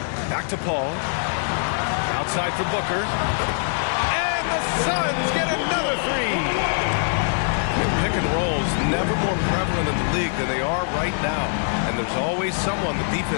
Back to Paul. Outside for Booker. And the Suns get another 3. Pick and rolls never more prevalent in the league than they are right now. And there's always someone the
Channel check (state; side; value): silent; right; digital silence